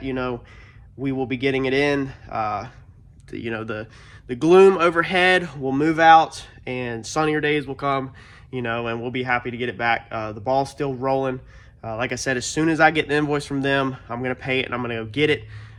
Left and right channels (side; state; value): both; identical; correlation 1.00